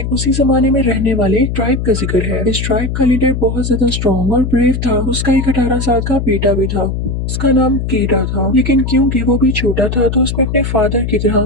उसी जमाने में रहने वाले एक ट्राइब का जिक्र है। इस ट्राइब का लीडर बहुत ज्यादा स्ट्रॉन्ग और ब्रेव था। उसका एक 18 साल का बेटा भी था। उसका नाम केटा था, लेकिन क्योंकि वो भी छोटा था तो उसमें अपने फादर की तरह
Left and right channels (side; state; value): left; noise; hum, 3 dB below the sound